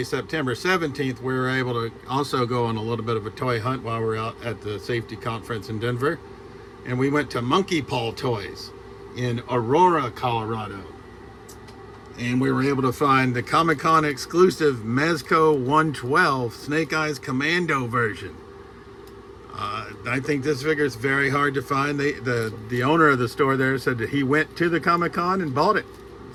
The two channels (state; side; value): identical; both; correlation 1.00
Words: September 17th, we were able to also go on a little bit of a toy hunt while we were out at the safety conference in Denver. And we went to Monkey Paw Toys in Aurora, Colorado. And we were able to find the Comic-Con exclusive Mezco 112 Snake Eyes Commando version. I think this figure is very hard to find. The owner of the store there said that he went to the Comic-Con and bought it.